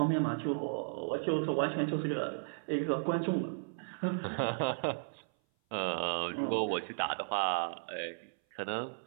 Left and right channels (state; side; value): silent; left; 55 dB below the other